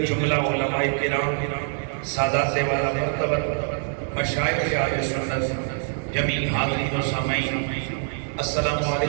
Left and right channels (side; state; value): left; silent; 62 dB below the other